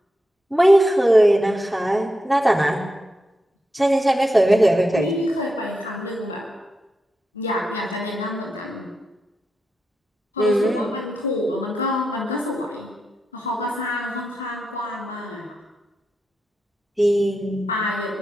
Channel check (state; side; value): normal; both; correlation 0.87